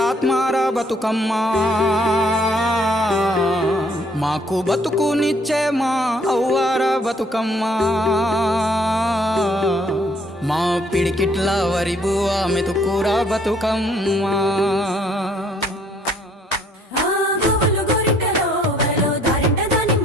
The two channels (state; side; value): normal; both; correlation 0.63